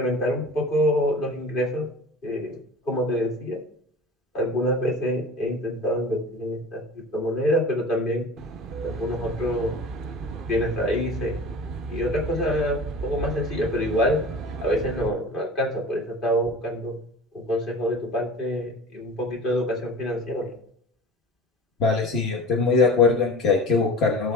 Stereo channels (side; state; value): both; normal; correlation 0.38